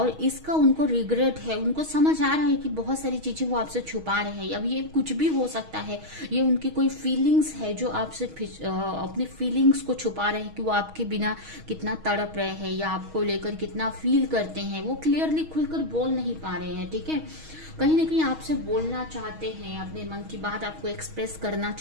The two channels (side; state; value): left; late; 6.3 ms